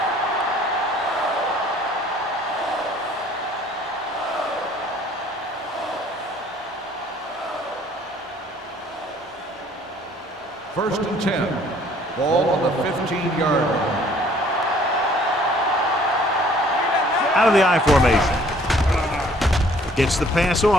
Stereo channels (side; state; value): both; normal; correlation 0.58